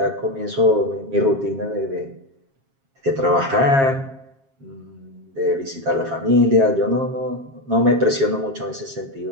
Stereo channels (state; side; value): late; left; 7.4 ms